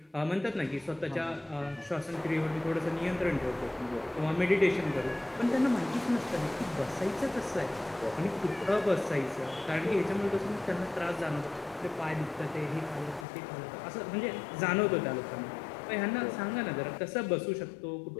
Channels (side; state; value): right; drops out; at 13.2 s